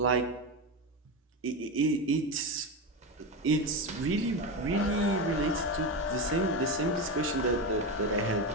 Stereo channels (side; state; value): both; normal; correlation 0.16